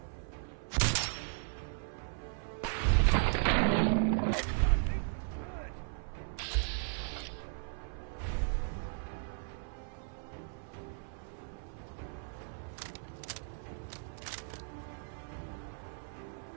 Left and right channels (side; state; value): left; silent; 54 dB below the other